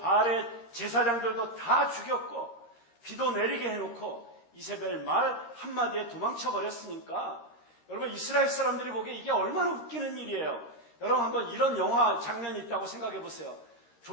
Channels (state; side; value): late; right; 13 ms